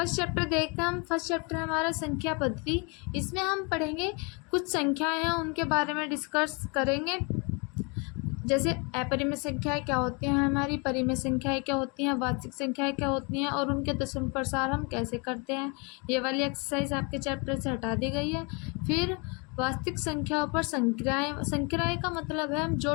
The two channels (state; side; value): quieter; right; 31.7 dB